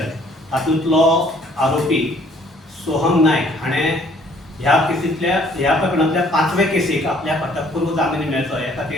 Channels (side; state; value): both; normal; correlation 0.60